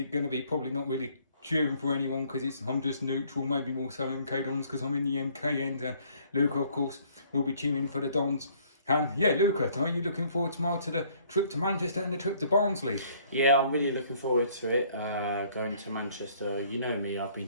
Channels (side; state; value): both; inverted; correlation -0.61